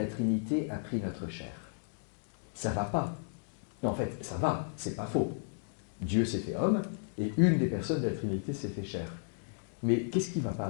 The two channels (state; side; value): silent; right; digital silence